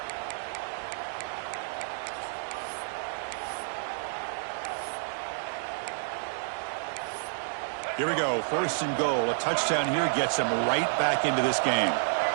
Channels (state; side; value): silent; left; digital silence